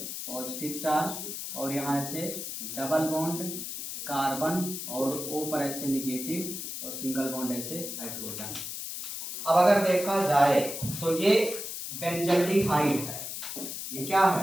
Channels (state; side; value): noise; left; hiss, 6 dB below the sound